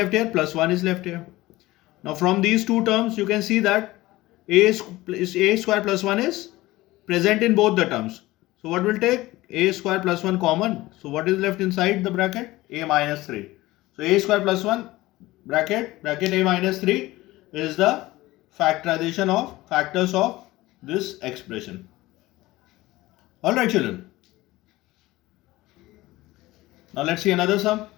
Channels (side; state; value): right; quieter; 18.5 dB